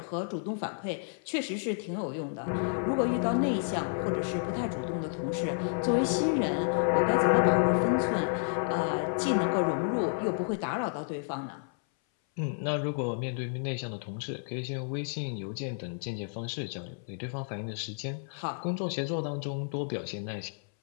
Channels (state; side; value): silent; right; 57 dB below the other